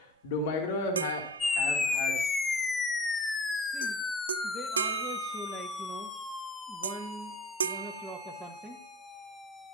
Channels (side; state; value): both; normal; correlation 0.41